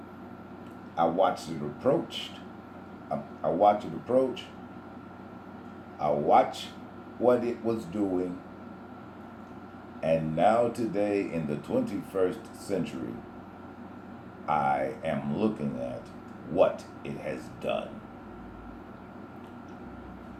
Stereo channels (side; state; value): both; identical; correlation 1.00